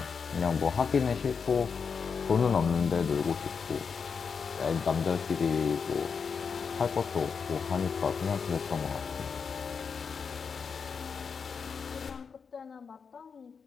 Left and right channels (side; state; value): right; quieter; 5.9 dB